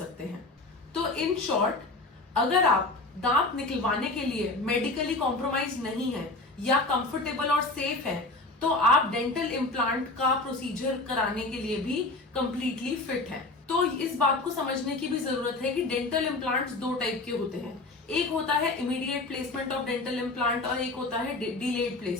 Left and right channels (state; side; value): quieter; right; 3.1 dB